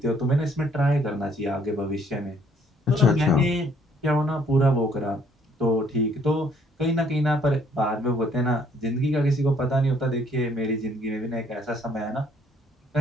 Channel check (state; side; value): normal; both; correlation 0.64